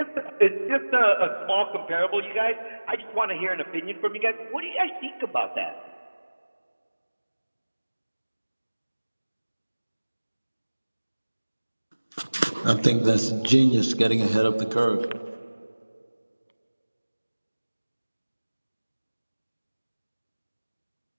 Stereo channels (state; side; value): inverted; both; correlation -1.00